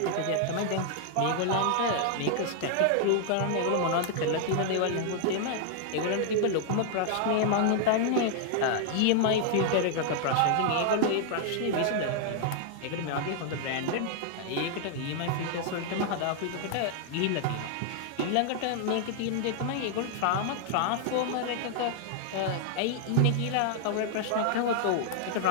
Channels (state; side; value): different; both; correlation -0.01